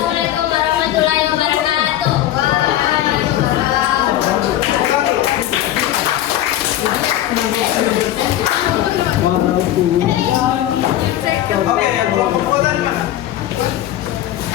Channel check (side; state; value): right; quieter; 12.8 dB